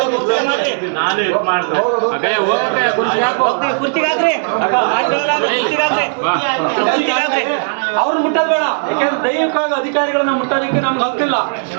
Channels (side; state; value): left; silent; digital silence